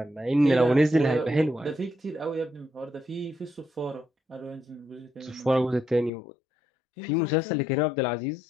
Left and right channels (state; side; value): drops out; right; at 6.1 s